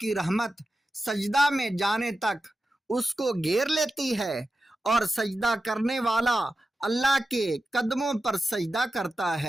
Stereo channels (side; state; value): both; normal; correlation 0.92